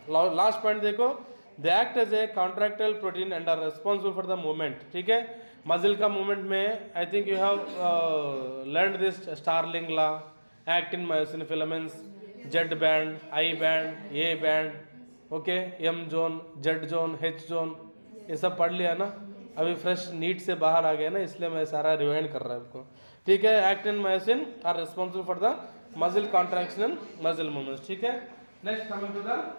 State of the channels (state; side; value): inverted; both; correlation -1.00